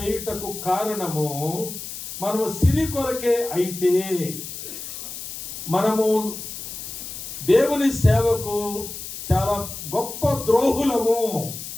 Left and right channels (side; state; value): left; noise; hiss, 9 dB below the sound